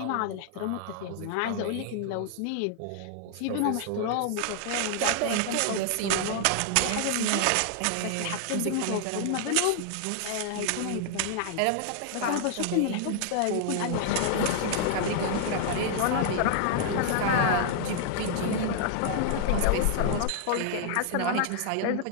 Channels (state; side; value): different; both; correlation -0.01